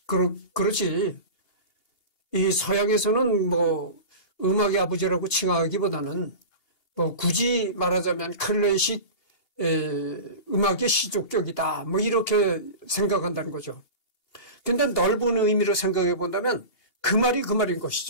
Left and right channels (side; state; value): right; late; 2.8 ms